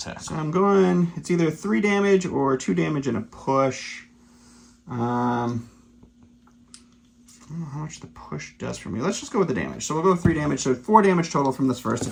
So I'm going, it's either 3 damage or 2 damage and a push. I don't know how much the push does for me. Let's just go with the damage. So we'll go with 3 damage, so 4 damage total from this first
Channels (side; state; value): both; identical; correlation 1.00